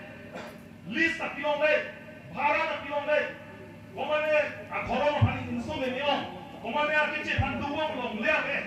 list tak pilong le, bharat tak pilong le, komane akhoro mahani insu memang. Komane arkice panduang long le ave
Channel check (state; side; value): identical; both; correlation 1.00